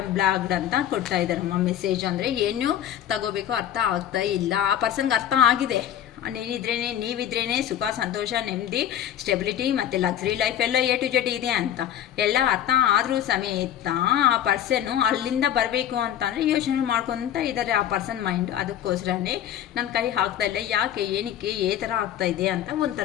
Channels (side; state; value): right; quieter; 10.8 dB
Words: ಬ್ಲಾಕ್ಡ್ ಅಂತ ಕೊಡ್ತಾ ಇದ್ದಾರೆ ಮೆಸೇಜ್. ಅಂದರೆ ಏನು ತಗೋಬೇಕು ಅರ್ಥ ಆಗ್ತಾ ಇಲ್ಲ. ಆ ಪರ್ಸನ್ಗೆ ಅರ್ಥ ಆಗಿದೆ, ನೀವಿದ್ರೇನೆ ಸುಖ, ಸಂತೋಷ, ನೆಮ್ಮದಿ, ಸ್ಟೆಬಿಲಿಟಿ ಮತ್ತು ಲಕ್ಸರಿ ಲೈಫ್ ಎಲ್ಲ A to Z ಇದೆ ಅಂತ ಎಲ್ಲ ಅರ್ಥ ಆದರೂ ಸಮೇತ ಆ ಪರ್ಸನ್ನು ಅಲ್ಲಿಂದ ಬರಬೇಕು ಅಂತಂದರೆ ಯೋಚನೆ ಮಾಡ್ಕೊತ ಇದ್ದಾರೆ ಆ ಪರ್ಸನ್ ಮೈಂಡ್. ಅದಕ್ಕೋಸ್ಕರನೇ ನನ್ನ ಕೈ ಹಾಕ್ತಾ ಇಲ್ಲ. ಯಾಕೆ, ಏನಕ್ಕೆ, ಏ ಥರ ಆಗ್ತಾ ಇದೆ ಅಂತ